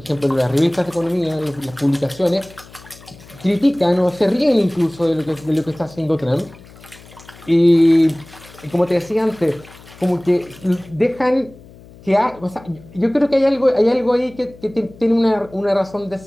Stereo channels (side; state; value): left; noise; hum, 22 dB below the sound